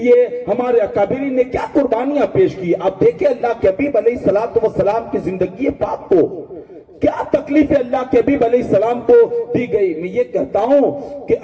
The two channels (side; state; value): both; identical; correlation 1.00